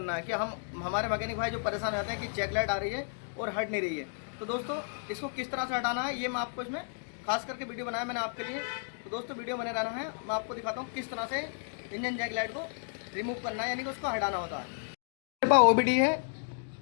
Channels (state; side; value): silent; right; 56 dB below the other